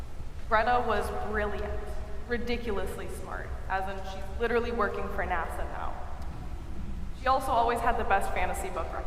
Greta was brilliant, ridiculously smart, as in she's literally working for NASA now. She also always had the best fantasy book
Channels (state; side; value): identical; both; correlation 1.00